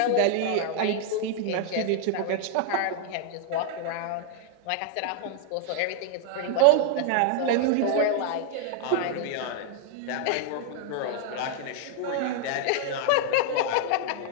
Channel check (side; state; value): both; different; correlation 0.00